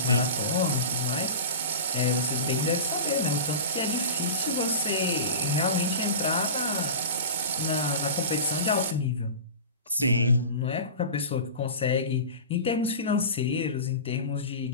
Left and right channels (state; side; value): inverted; both; correlation -0.31